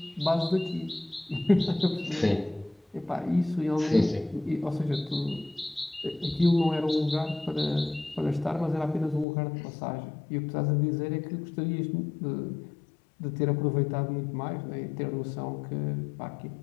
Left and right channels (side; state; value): right; drops out; at 9.2 s